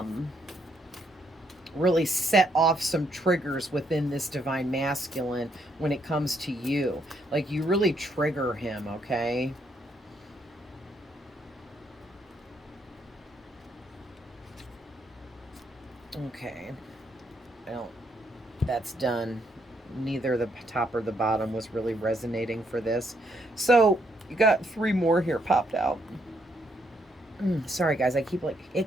set off some triggers within this divine masculine when it comes to you. Like, you really trigger him, okay? Okay. I don't, that's done. Neither the top or the bottom was really resonating for this. So, you got 3 more here popped out. Sorry, guys, I keep like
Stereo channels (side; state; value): both; normal; correlation 0.74